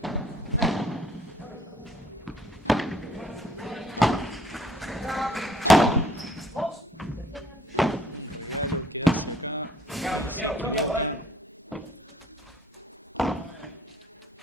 Un regalo que hace acá y se equivoca.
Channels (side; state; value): both; normal; correlation 0.60